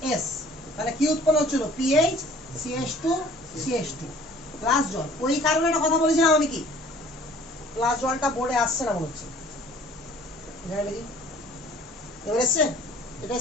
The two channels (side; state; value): both; normal; correlation 0.52